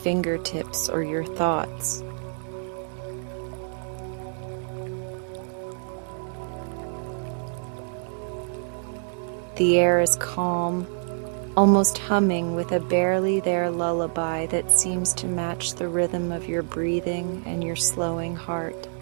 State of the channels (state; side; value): silent; left; digital silence